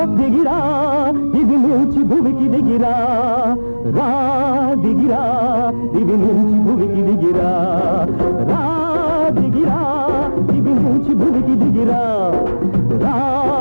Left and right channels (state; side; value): inverted; both; correlation -1.00